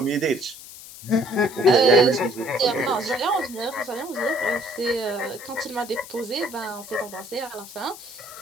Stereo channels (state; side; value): noise; left; hiss, 15 dB below the sound